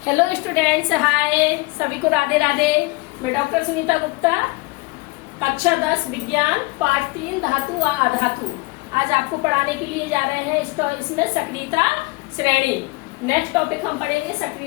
हेलो स्टूडेंट्स, हाय सभी को राधे राधे। मैं डॉक्टर सुनीता गुप्ता, कक्षा 10 विज्ञान पाठ 3 धातु व अधातु आज आपको पढ़ाने के लिए जा रहे हैं। इसमें सक्रियता श्रेणी। नेक्स्ट टॉपिक हम पढ़ेंगे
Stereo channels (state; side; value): quieter; right; 25.5 dB